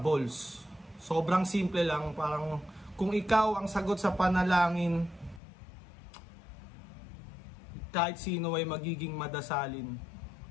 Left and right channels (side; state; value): right; drops out; at 5.4 s